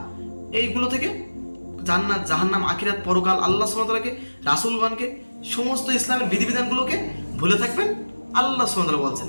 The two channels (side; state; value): both; inverted; correlation -1.00